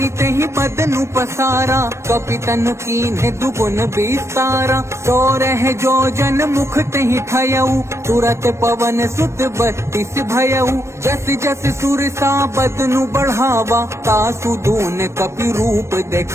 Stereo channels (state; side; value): late; left; 0.13 ms